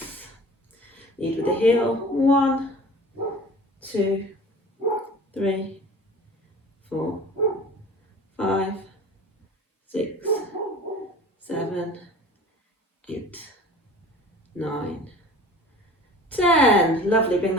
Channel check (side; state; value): both; normal; correlation 0.42